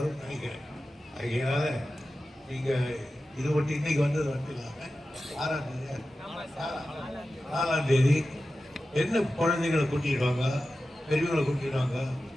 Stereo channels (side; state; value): both; normal; correlation 0.93